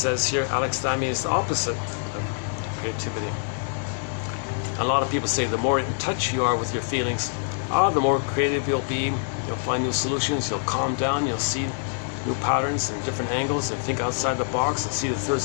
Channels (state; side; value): silent; right; digital silence